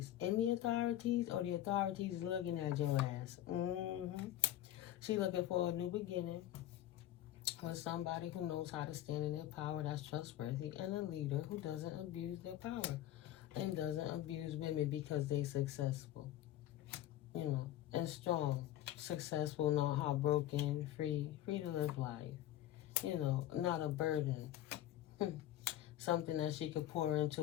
And the authorities is looking at your ass. She looking for a new beginning with somebody who knows how to stand in their power, that's trustworthy, and a leader who doesn't abuse their power and doesn't abuse women because they successful, and strong, successful, not heartbroken, free to live life, not a burden, something that she could pour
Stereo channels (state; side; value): quieter; right; 13.0 dB